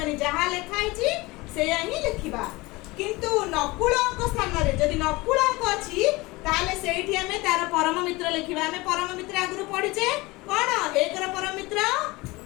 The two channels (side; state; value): right; quieter; 22.2 dB